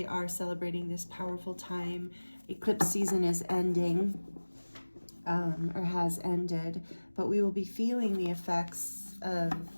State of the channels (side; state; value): both; inverted; correlation -1.00